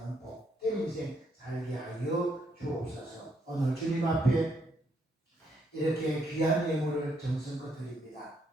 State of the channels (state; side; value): normal; both; correlation 0.74